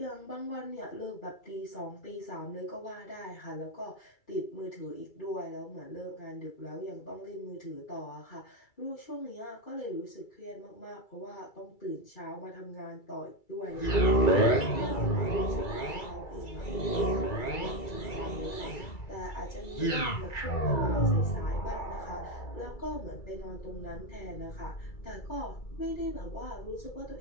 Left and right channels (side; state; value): right; late; 2.3 ms